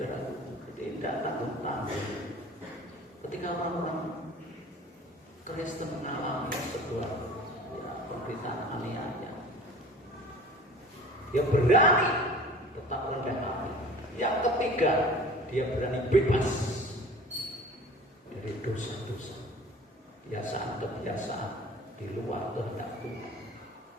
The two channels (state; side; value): normal; both; correlation 0.44